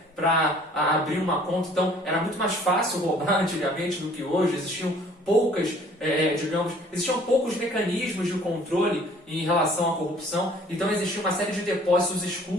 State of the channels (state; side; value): normal; both; correlation 0.55